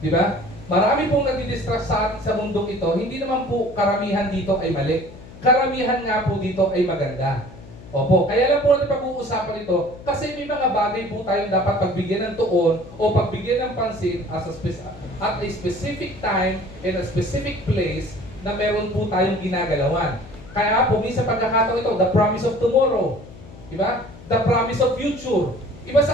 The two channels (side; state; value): left; noise; hum, 18 dB below the sound